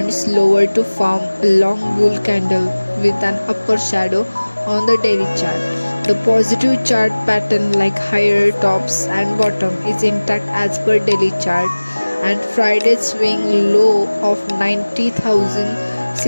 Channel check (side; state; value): both; inverted; correlation -1.00